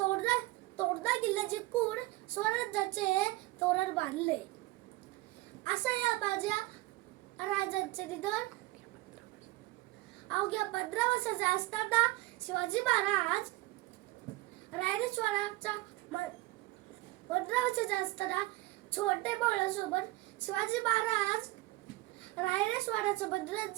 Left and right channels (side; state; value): left; quieter; 19.7 dB